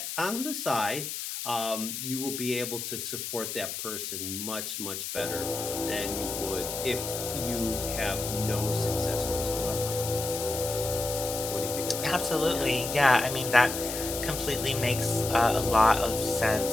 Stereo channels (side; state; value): left; noise; hiss, 5 dB below the sound